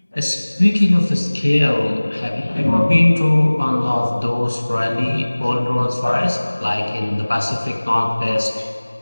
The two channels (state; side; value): inverted; both; correlation -1.00